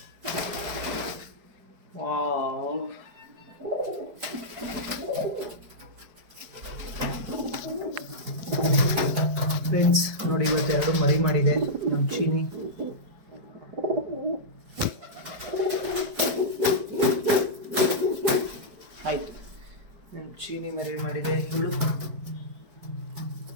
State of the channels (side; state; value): left; late; 4.7 ms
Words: ವಾವ್, ಫ್ರೆಂಡ್ಸ್ ನೋಡಿ, ಇವತ್ತು 2 ಮರಿ ಮಾಡಿದೆ ನಮ್ಮ ಚೀನಿ. ಆಯ್ತು, ನಮ್ಮ ಚೀನಿ ಮರಿ ಮಾಡಿದೆ. ಇವಳು